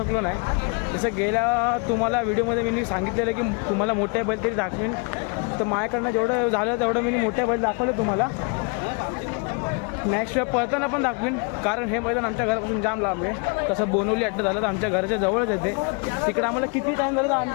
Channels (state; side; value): quieter; right; 35.5 dB